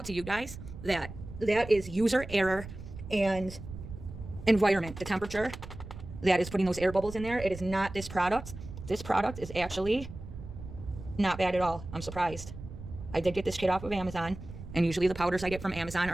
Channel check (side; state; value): right; noise; rumble, 12 dB below the sound